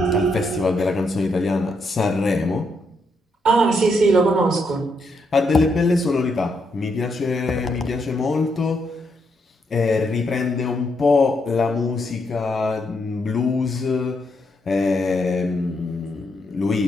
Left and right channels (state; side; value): normal; both; correlation 0.78